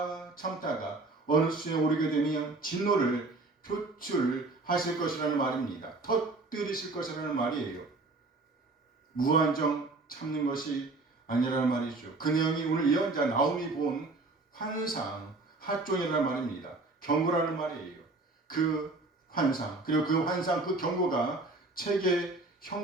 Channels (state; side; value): quieter; left; 3.3 dB